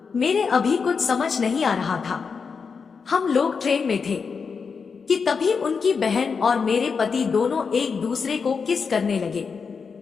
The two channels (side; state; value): right; quieter; 5.5 dB